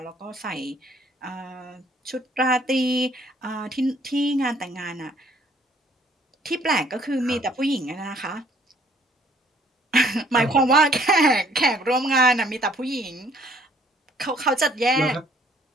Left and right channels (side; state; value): both; normal; correlation 0.61